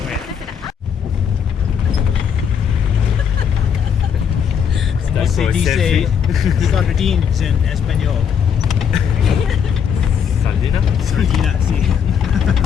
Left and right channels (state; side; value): quieter; right; 7.5 dB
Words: ¿Cómo se dice sardines en español? Sardina? Sardina, sí.